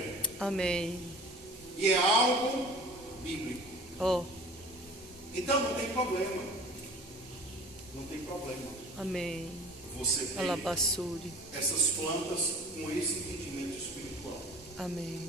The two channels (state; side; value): normal; both; correlation 0.43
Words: Amém. E é algo bíblico. Então não tem problema. Não tem problema. Amém. Você tem essas plantas com esse entendimento espiritual.